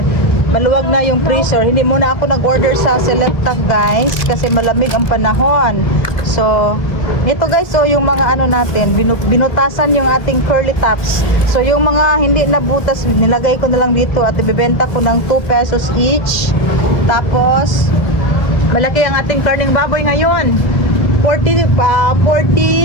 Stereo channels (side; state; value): right; late; 2.5 ms